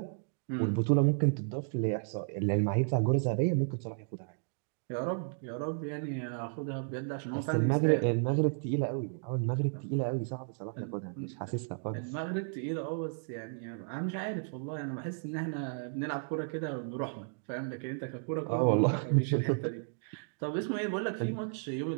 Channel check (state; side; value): silent; left; digital silence